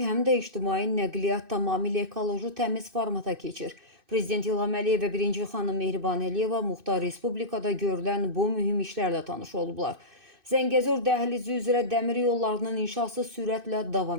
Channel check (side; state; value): left; late; 2.6 ms